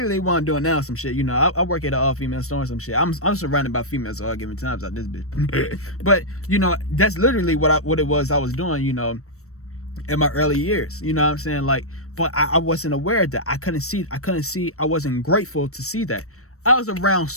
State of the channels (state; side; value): late; right; 0.64 ms